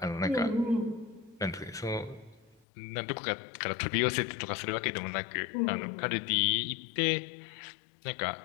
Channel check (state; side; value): drops out; right; at 2.6 s